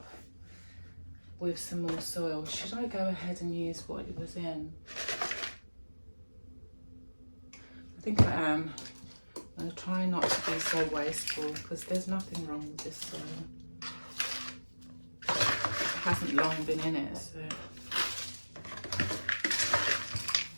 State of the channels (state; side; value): inverted; both; correlation -1.00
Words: with some more soil. Should I go ahead and use what it was in? I think I am. I'm going to try not to be so wasteful because there's nothing wrong with this soil. It hasn't long been in it, so.